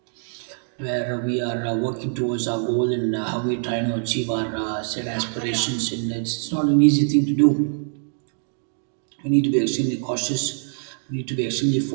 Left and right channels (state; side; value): silent; left; digital silence